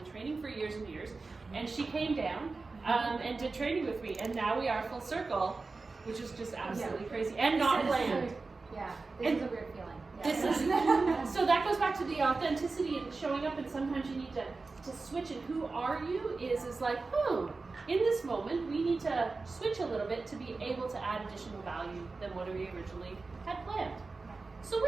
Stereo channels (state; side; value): quieter; left; 3.9 dB